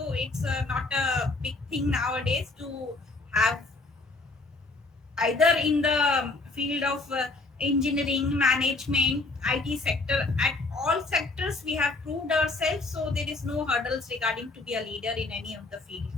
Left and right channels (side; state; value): right; quieter; 3.4 dB